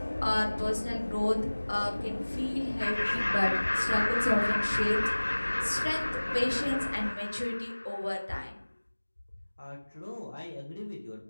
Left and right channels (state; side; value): inverted; both; correlation -1.00